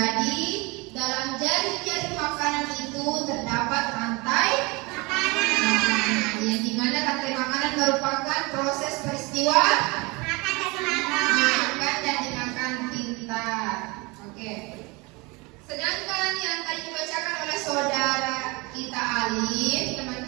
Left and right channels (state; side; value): quieter; left; 26.0 dB